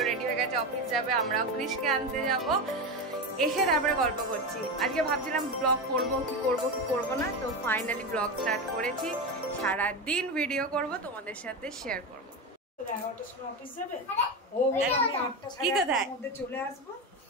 রেডি হয়ে গেছে, অফিস যাবে, আমরাও কৃষকে আনতে যাব। এসে তারপরে গল্প করছি। আজকে ভাবছিলাম ব্লগ করবো কি করবো না, তো ফাইনালি ব্লগ স্টার্ট করেছি। সারাদিন ভিডিও করব, তোমাদের সাথে শেয়ার করবো। কি কোথায়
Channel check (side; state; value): both; normal; correlation 0.18